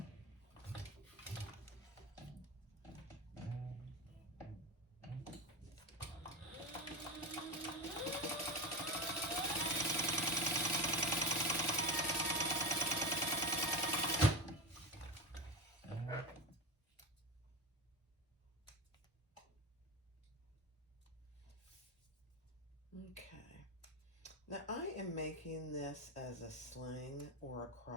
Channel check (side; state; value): both; normal; correlation 0.23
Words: Okay, now I am making this as a sling or a